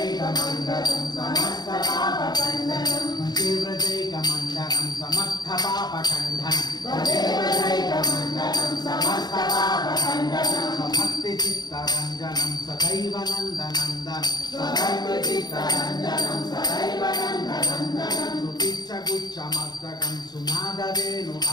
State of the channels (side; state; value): right; late; 0.20 ms